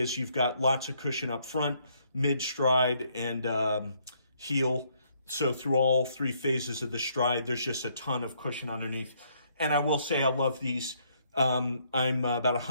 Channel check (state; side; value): inverted; both; correlation -0.69